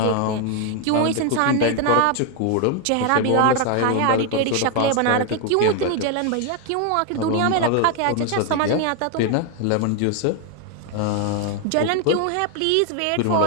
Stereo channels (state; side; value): different; both; correlation 0.01